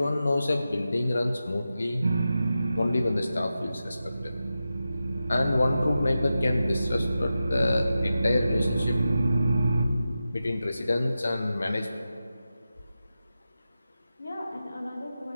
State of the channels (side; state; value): both; inverted; correlation -0.92